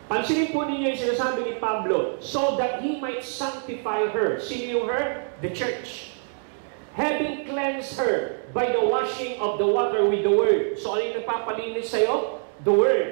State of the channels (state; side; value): silent; left; 58 dB below the other